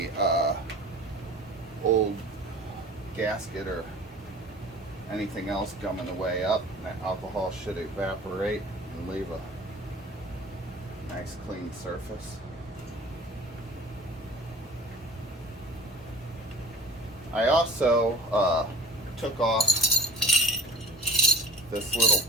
old gasket or anything else gumming the way up. That alcohol should evaporate and leave a nice clean surface. I also took off this little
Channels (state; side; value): normal; both; correlation 0.41